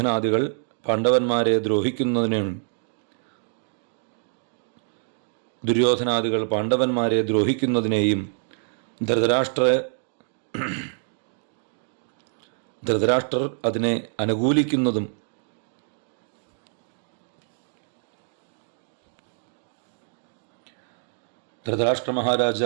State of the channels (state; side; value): silent; left; 59 dB below the other